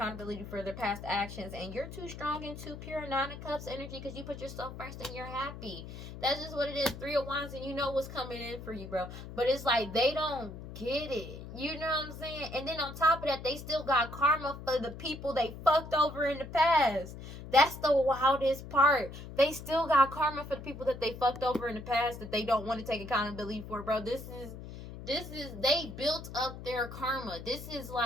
for their past actions. And you're too strong and too pure. 9 of Cups energy, because you put yourself first and you're happy. That's just what it is. 3 of Wands, and you know what's coming in for you, bro. But it's like, they don't get it. You know what I'm saying? And then on top of that, they still got karma for the people they fucked over in the past. That's the wildest part. They still got karma for the people that they fucked over in the past that they don't want to take accountability for, bro. This is, they built up their karma. This is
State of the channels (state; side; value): noise; left; hum, 12 dB below the sound